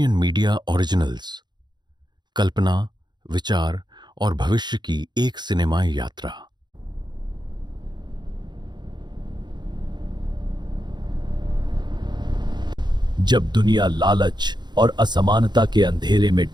मीडिया ओरिजिनल्स, कल्पना, विचार और भविष्य की एक सिनेमाई यात्रा। जब दुनिया लालच और असमानता के अंधेरे में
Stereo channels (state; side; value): late; left; 0.21 ms